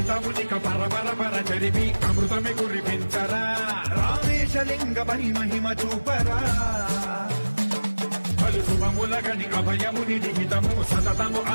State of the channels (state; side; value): inverted; both; correlation -1.00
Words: దురితమునిక పరపర చరిమి అమృతమే కురిపించరా రామేశలింగ పని మహిమ చూపరా పలు శుభములగని అభయముని నిహితము సతతము